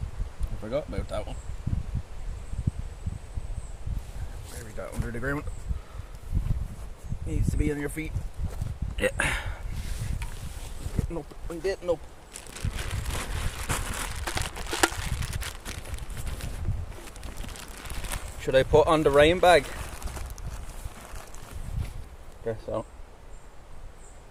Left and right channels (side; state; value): both; identical; correlation 1.00